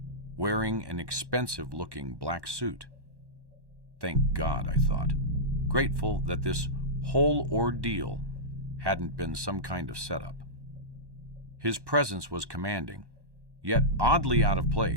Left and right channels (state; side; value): late; left; 1.1 ms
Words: wearing an expensive-looking black suit. Thank God, I thought, grateful that this whole ordeal hadn't been some kind of setup. His presence was commanding, yet oddly out of